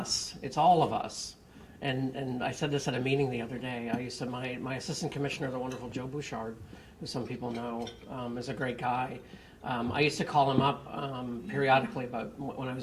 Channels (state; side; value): identical; both; correlation 1.00